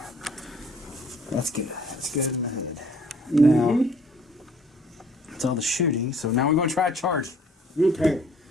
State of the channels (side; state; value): both; normal; correlation 0.57